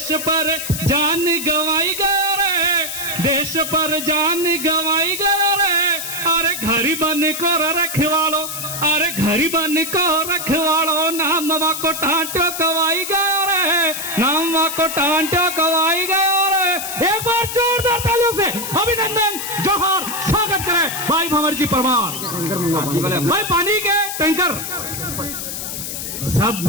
पर जान गवाई गए रहे, देश पर जान गवाई गए रहे। अरे घरी बन को रखवालो, अरे घरी बन को रखवालो, नामवा को ठांटो कवाई गए रहे, नामवा को ठांटो कवाई गए रहे। एक बार जोरदार तालियों से अभिनंदन जोहर स्वागत करें भाई भंवर जी परमार। भाई पानी के टैंकर सब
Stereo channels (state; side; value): noise; left; hiss, 6 dB below the sound